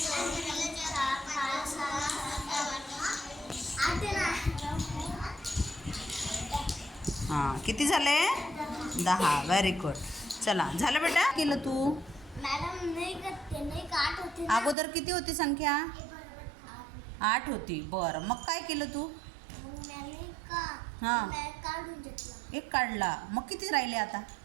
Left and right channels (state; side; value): drops out; left; at 14.8 s